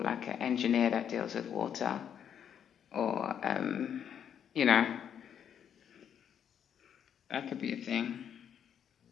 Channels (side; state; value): right; quieter; 8.7 dB